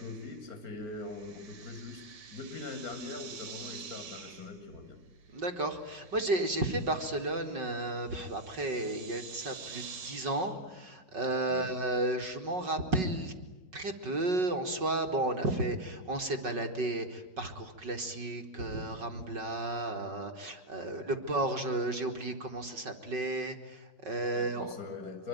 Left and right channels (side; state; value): left; late; 5.4 ms